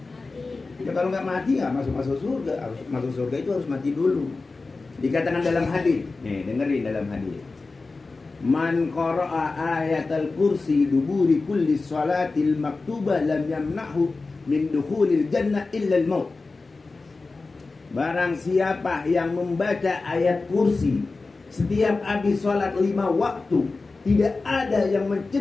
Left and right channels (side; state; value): right; quieter; 3.8 dB